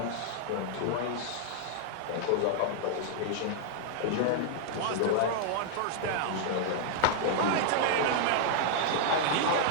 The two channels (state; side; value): different; both; correlation -0.01